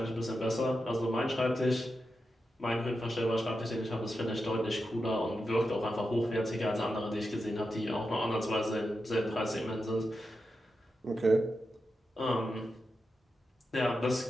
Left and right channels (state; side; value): normal; both; correlation 0.89